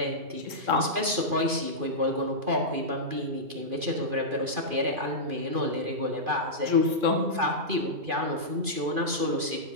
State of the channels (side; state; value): left; late; 2.5 ms